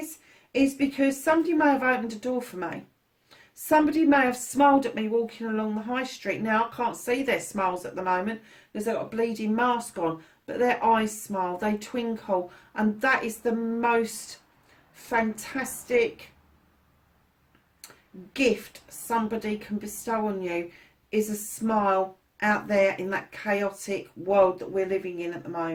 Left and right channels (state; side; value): identical; both; correlation 1.00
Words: because somebody may have opened a door for me. Somebody may have smiled at me walking along the high street. Now, I can't see their smiles at the moment because they've got a bleeding mask on, but their eyes smile, they twinkle, and that is the most fantastic gift somebody can bestow on you, is a smile out there in that chaotic world that we're living in at the